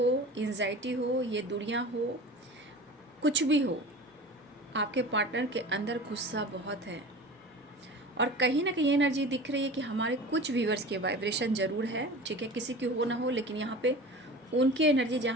एंजाइटी हो, ये दुनिया हो, कुछ भी हो, आपके पार्टनर के अंदर गुस्सा बहुत है। और कहीं ना कहीं एनर्जी दिख रही है कि हमारे कुछ व्यूअर्स के वाइब्रेशन ज़रूर है, ठीक है, किसी की हो ना हो, लेकिन यहाँ पे उनकी एनर्जी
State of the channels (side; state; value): both; normal; correlation 0.36